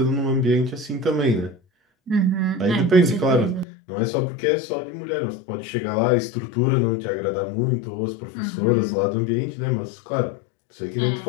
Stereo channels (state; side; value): drops out; right; at 3.7 s